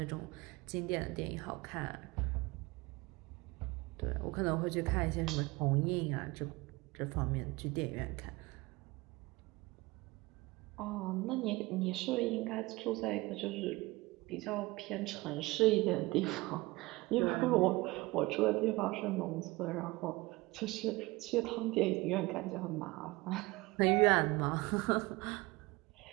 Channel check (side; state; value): left; quieter; 22.0 dB